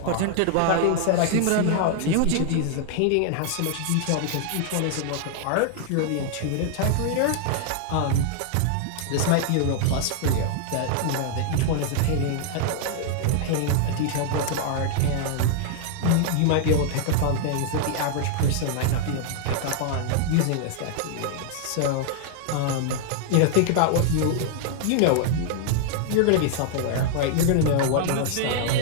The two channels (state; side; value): different; both; correlation 0.00